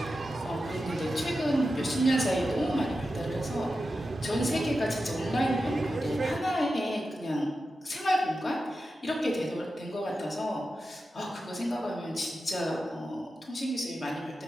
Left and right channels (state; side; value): normal; both; correlation 0.91